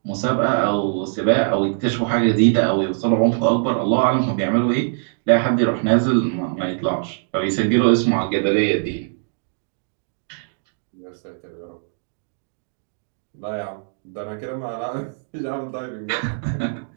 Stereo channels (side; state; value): left; silent; digital silence